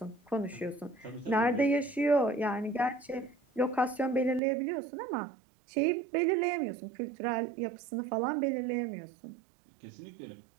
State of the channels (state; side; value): drops out; left; at 4.4 s